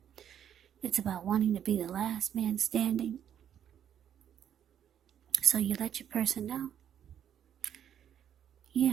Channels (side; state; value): left; quieter; 9.5 dB